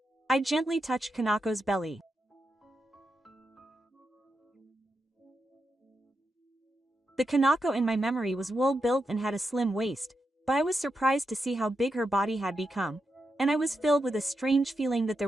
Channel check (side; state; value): both; normal; correlation 0.86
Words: I gently touched Kanako's belly. The Kanako in my memory was well-built and had a slim waist, but I was surprised to see how big her body had become, and I was filled with a strange feeling that there